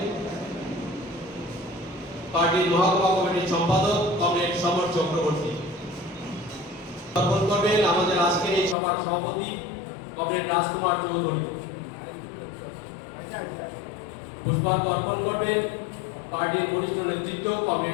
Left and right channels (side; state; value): right; drops out; at 8.8 s